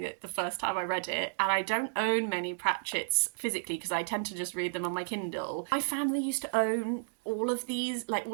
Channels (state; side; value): silent; left; digital silence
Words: it the first time I read it. And I don't own many Pratchetts physically because I tend to just read them on my Kindle. My family used to own all of these